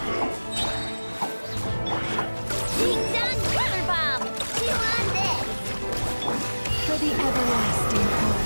Ding dong water bomb! Chew on this! For the everlasting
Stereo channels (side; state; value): both; inverted; correlation -1.00